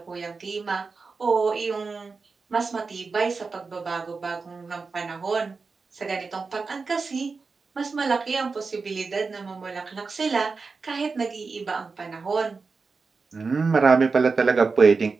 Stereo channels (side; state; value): left; quieter; 4.5 dB